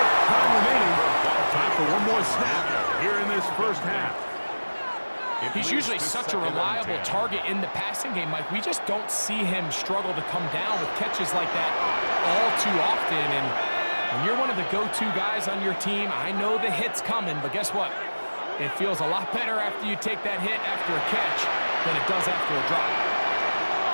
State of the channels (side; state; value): both; inverted; correlation -1.00